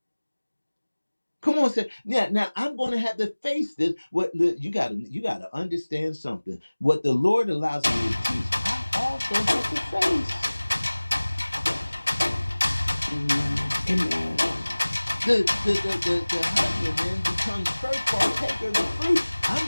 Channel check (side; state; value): both; inverted; correlation -1.00